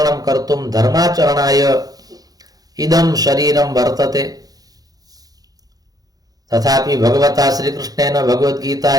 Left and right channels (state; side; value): late; left; 0.18 ms